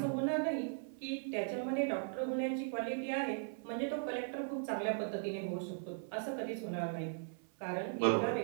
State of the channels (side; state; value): left; silent; 52 dB below the other